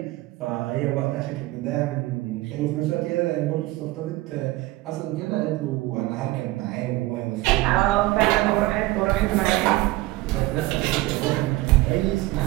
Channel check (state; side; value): quieter; left; 18.8 dB